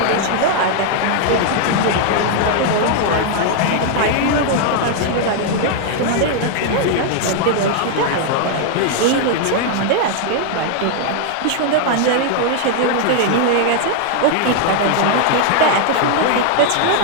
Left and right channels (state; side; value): different; both; correlation 0.00